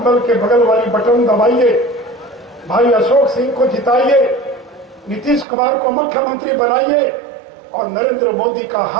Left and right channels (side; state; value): left; drops out; at 5.5 s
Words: के बगल वाली बटन दबाइए, भाई अशोक सिंह को जिताइए, नीतीश कुमार को मुख्यमंत्री बनाइए और नरेंद्र मोदी का